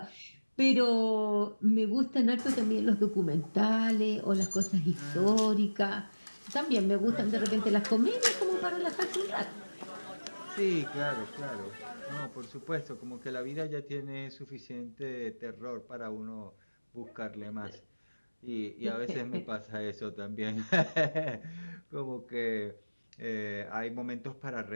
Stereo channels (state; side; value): inverted; both; correlation -1.00